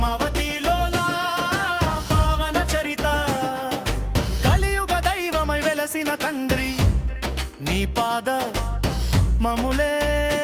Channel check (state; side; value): identical; both; correlation 1.00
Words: లోలా పావన చరిత కలియుగ దైవమై వెలసిన తండ్రి నీ పాద మములే